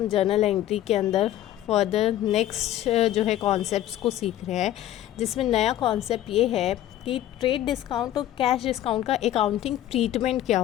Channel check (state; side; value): quieter; right; 12.9 dB